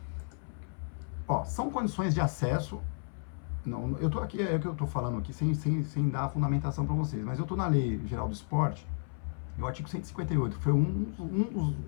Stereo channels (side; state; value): right; silent; 56 dB below the other